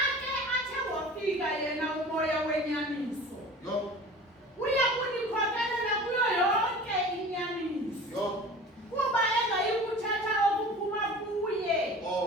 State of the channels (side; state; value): both; normal; correlation 0.40